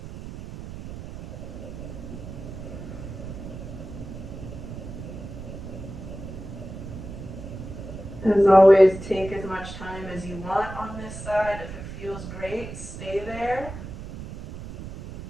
As always, take as much time as you want on this side. If it feels great, stay there.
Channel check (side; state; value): right; noise; rumble, 10 dB below the sound